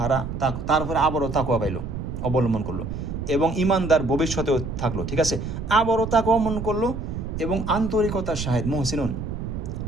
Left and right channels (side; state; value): right; noise; rumble, 6 dB below the sound